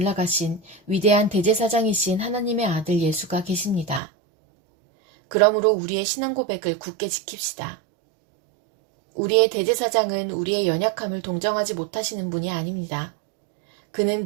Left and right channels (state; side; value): drops out; left; at 4.0 s